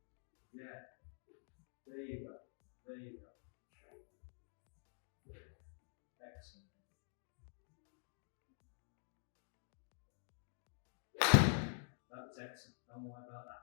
Yeah. There you go. There you go. Excellent. That was excellent. Don't worry about that.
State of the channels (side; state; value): right; silent; digital silence